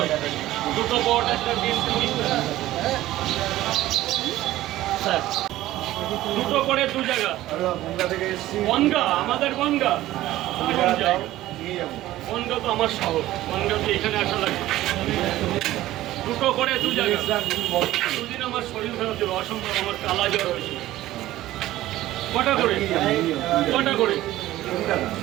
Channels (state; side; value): quieter; left; 15.3 dB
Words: দুটো বট, একটা ডিম, 30 টাকা স্যার। দুটো করে 2 জায়গা। বনগা, আমাদের বনগা। বনগা তো আমার শহর। বনগা তো এখানে আসা লাগে। দুটো করে 2 জায়গা। দুদিন আমার শরীর খারাপ ছিল, অসম্ভব। আমার কালা জ্বর হয়েছিল। কটা করে? কটা করে?